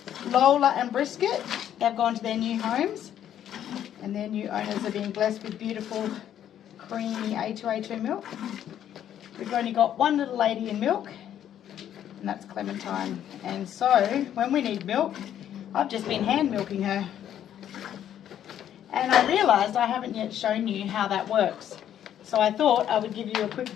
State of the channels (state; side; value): quieter; right; 10.5 dB